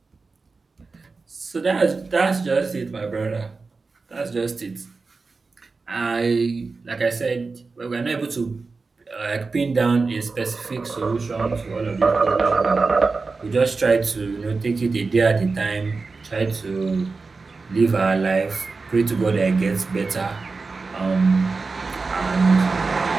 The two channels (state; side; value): quieter; left; 4.1 dB